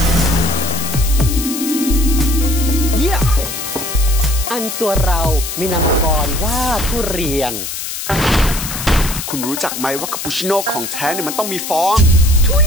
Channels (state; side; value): noise; left; hiss, 6 dB below the sound